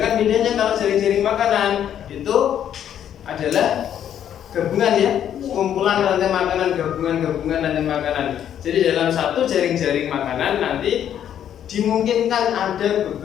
bedanya kalau jaring-jaring makanan itu adalah gabungan ya, kumpulan rantai makanan, gabungan rantai makanan. Jadi dalam satu jaring-jaring makanan nanti dimungkinkan ada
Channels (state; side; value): quieter; right; 9.9 dB